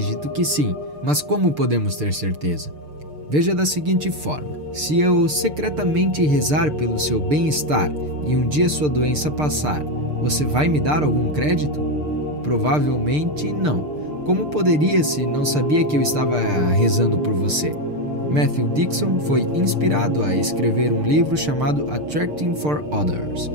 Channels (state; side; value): late; left; 6.7 ms